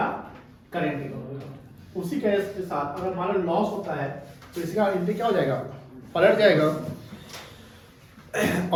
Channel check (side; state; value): both; identical; correlation 1.00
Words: करेंट अकाउंट। उसी केस के साथ अगर हमारा लॉस होता है तो इसका एंट्री क्या हो जाएगा? पलट जाएगा,